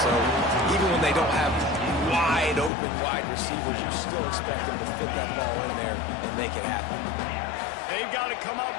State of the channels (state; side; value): drops out; right; at 2.7 s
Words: even when they don't have wide open wide receivers, you still expect them to fit that ball in there and make it happen. They've got to come up